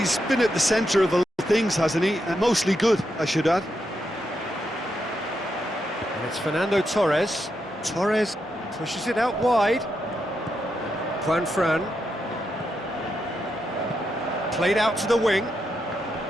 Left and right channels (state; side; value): normal; both; correlation 0.83